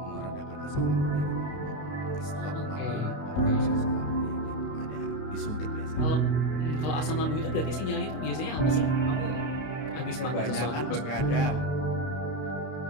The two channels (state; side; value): late; right; 32 ms